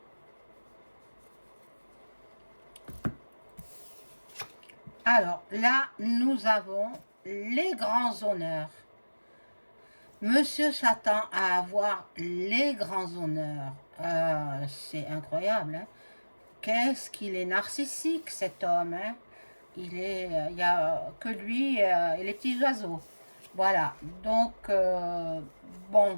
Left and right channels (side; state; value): both; inverted; correlation -1.00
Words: Alors, là, nous avons les grands honneurs. Monsieur s'attend à avoir les grands honneurs. C'est incroyable. Hein? Qu'est-ce qu'il est narcissique, cet homme. Hein? Il n'y a que lui et les petits oiseaux. Voilà. Donc,